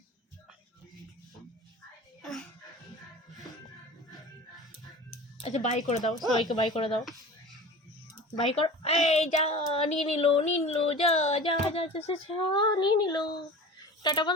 আচ্ছা বাই করে দাও, সবাইকে বাই করে দাও, বাই কর। এই যা, নিয়ে নিল যা যা যা যা যা যা, নিয়ে নিল। টাটা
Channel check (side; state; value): both; normal; correlation 0.37